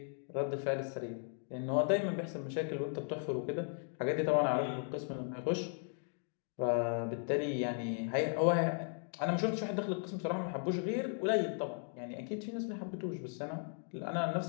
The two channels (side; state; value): right; silent; 53 dB below the other